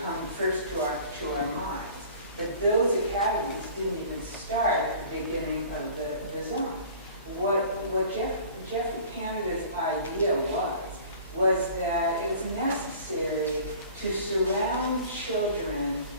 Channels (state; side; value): inverted; both; correlation -0.46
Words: come first to our minds. But those academies didn't even start at the beginning of the zone. What Jeffrey Canada's idea was that it was necessary to surround children